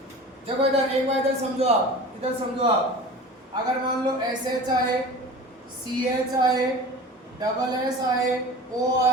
देखो इधर एक बार इधर समझो आप, इधर समझो आप। अगर मान लो एस एच आए, सी एच आए, डबल एस आए, ओ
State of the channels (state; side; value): normal; both; correlation 0.37